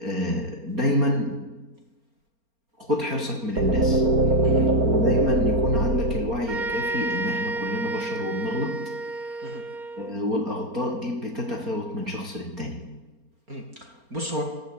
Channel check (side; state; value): left; late; 4.3 ms